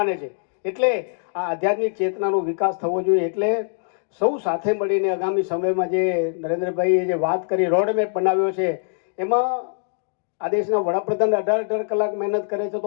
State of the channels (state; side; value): silent; right; digital silence